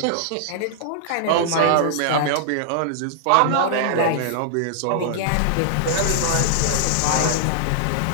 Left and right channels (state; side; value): different; both; correlation -0.01